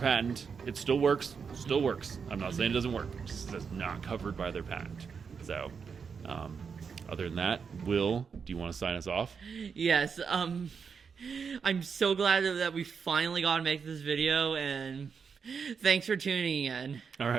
It still works. Still works. I'm not saying it doesn't work. It's just not covered by their patent. So, other than that, Will, do you want to sign us off? Yes, I'm so glad that we finally got to make this video, and thanks for tuning in. All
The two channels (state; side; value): quieter; left; 6.0 dB